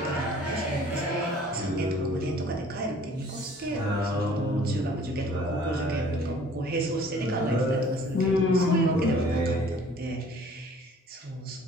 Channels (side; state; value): both; normal; correlation 0.52